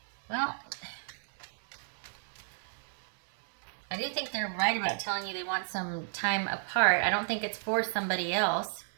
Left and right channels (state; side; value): silent; left; 56 dB below the other